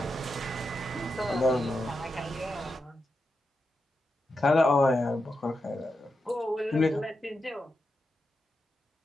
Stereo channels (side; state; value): both; normal; correlation 0.87